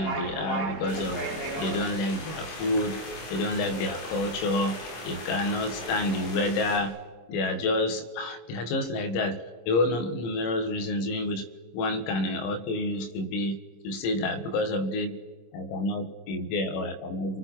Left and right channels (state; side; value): late; right; 26 ms